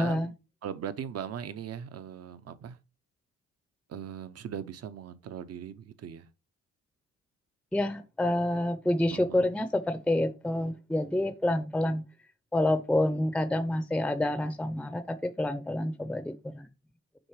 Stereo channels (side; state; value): both; normal; correlation 0.89